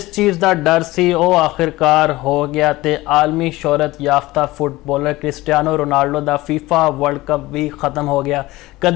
चीज़ का डर सी वो आखिरकार हो गया ते आलमी शोहरत याफ्ता फुटबॉलर क्रिस्टियानो रोनाल्डो का फीफा वर्ल्ड कप भी ख़त्म हो गया।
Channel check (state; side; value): quieter; right; 18.9 dB